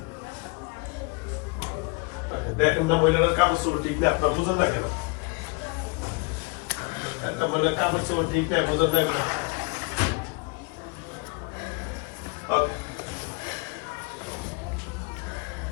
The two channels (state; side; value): quieter; right; 29.9 dB